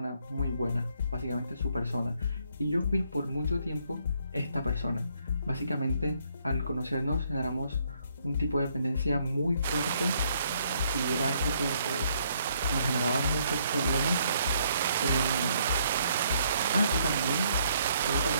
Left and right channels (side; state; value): both; inverted; correlation -0.69